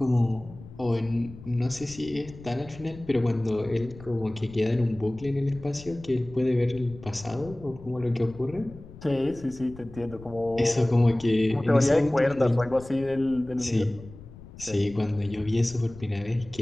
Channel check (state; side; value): noise; left; rumble, 17 dB below the sound